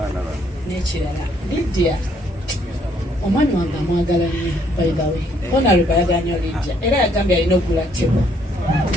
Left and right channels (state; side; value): normal; both; correlation 0.68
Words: n'ekirala Lydia omwami wange amwagala nnyo by the way Honorable bayagala nnyo Lydia era yagambye alina okugula tebo